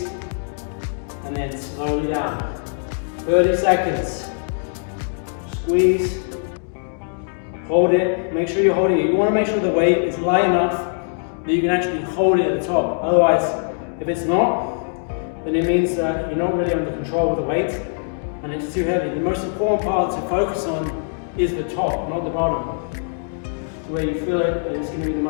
And then slowly down. 30 seconds. Squeeze. Hold it. Make sure you're holding it. You want to make sure the weight is light enough that you can actually hold it at the top. Otherwise, if it's not, then it means that you're not really under control of the weight and it's too heavy. The most important part to focus on is the top, not the bottom. It's where you feel it, and it's going to be the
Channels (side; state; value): right; silent; digital silence